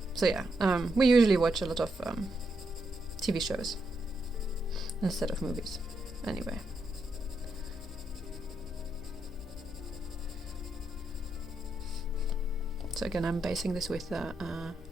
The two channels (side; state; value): both; normal; correlation 0.81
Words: So yeah, we usually watch a lot of TV shows instead of movies. Anyway. So again, I'm basing this with Dog